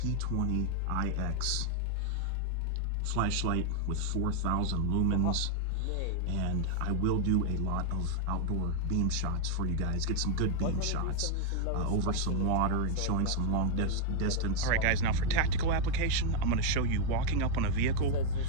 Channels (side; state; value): both; different; correlation 0.00